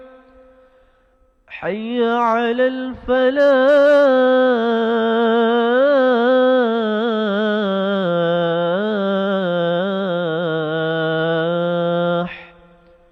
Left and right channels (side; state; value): both; identical; correlation 1.00